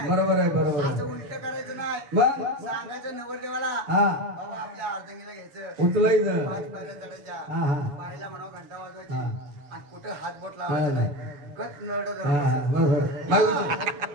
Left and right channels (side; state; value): left; late; 6.9 ms